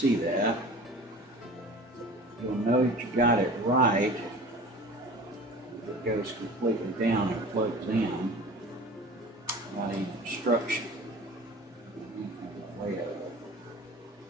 that. You'll know that you got it right if it goes completely down and plugs in without any obstruction. Way of it.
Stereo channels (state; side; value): normal; both; correlation 0.39